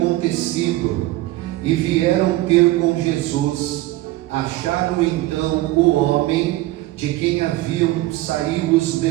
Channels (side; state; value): left; quieter; 17.4 dB